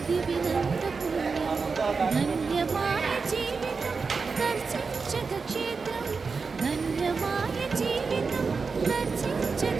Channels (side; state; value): left; quieter; 4.8 dB